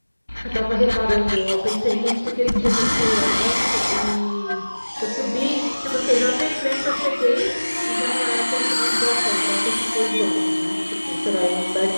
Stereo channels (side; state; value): both; inverted; correlation -1.00